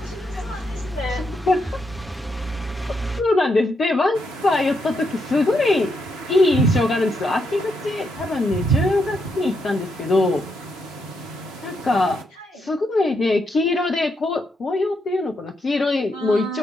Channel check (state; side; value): normal; both; correlation 0.80